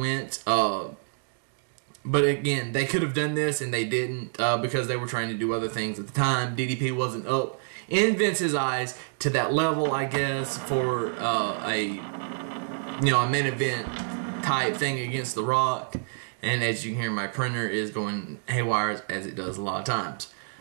But again, they could have done this and they didn't, because they were trying to do other things at the time. DDP wasn't up in Vince's eyes to that level, I guess, for a main event type thing against The Rock. And as you can hear, my printer is going haywire, as it does a lot of times.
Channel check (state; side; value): silent; left; digital silence